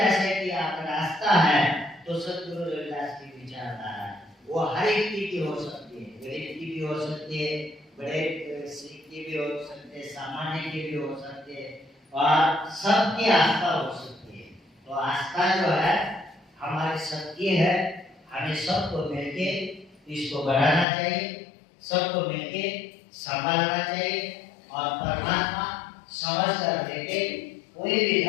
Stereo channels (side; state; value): right; drops out; at 20.9 s